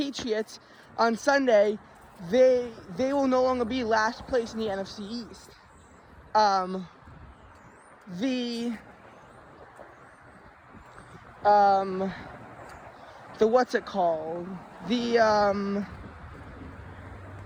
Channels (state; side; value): identical; both; correlation 1.00